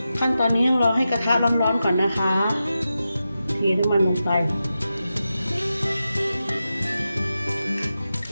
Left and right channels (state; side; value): inverted; both; correlation -0.91